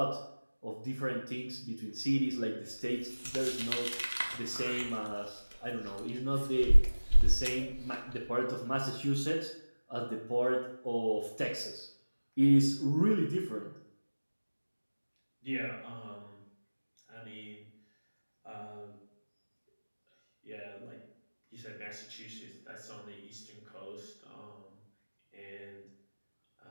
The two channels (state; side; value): inverted; both; correlation -1.00